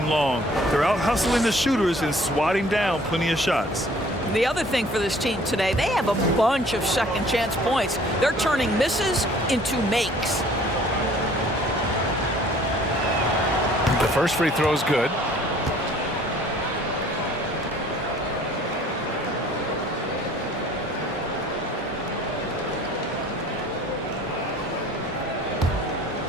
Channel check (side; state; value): both; normal; correlation 0.54